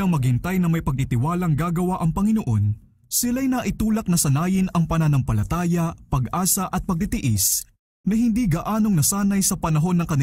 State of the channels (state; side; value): identical; both; correlation 1.00